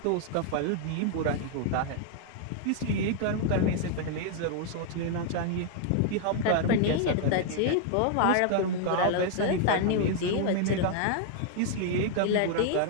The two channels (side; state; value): both; different; correlation 0.00